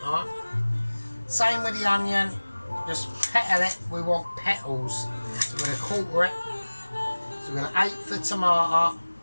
Alright. Same with the onion. Just petal it. We want petals. So we're going to quarter it. So we're going to 8 for tomato.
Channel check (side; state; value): both; inverted; correlation -1.00